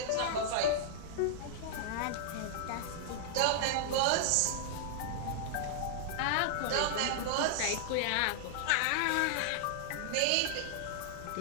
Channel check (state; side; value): different; both; correlation -0.01